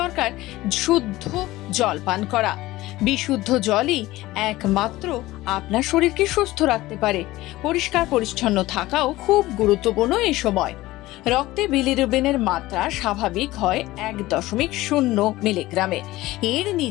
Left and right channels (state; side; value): quieter; right; 17.8 dB